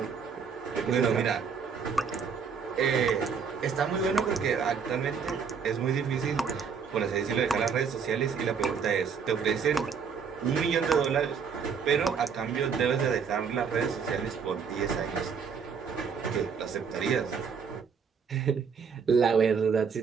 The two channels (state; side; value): quieter; left; 6.2 dB